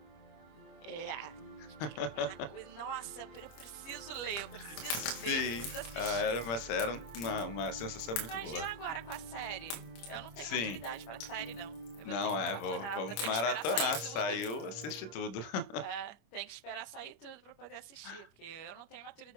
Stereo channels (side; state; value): right; late; 26 ms